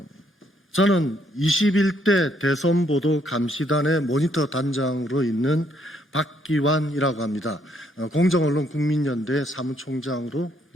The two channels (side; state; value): both; normal; correlation 0.70